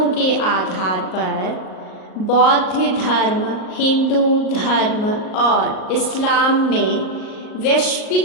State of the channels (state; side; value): late; right; 38 ms